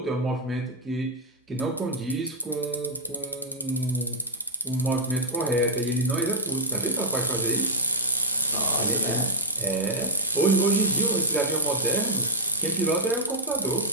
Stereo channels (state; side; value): normal; both; correlation -0.15